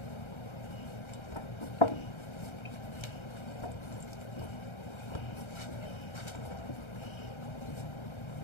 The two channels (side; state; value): right; late; 1.3 ms